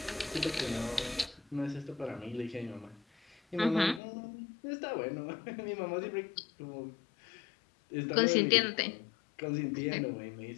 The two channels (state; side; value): drops out; right; at 4.0 s